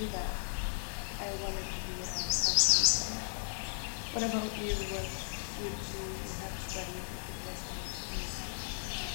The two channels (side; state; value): right; silent; digital silence